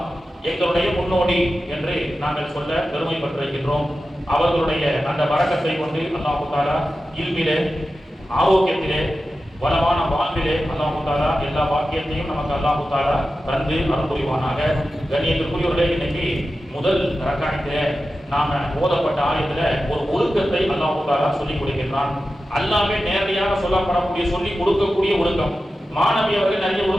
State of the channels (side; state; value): both; normal; correlation 0.93